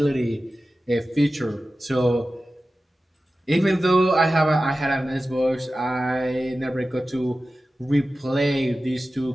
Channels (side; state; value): both; normal; correlation 0.94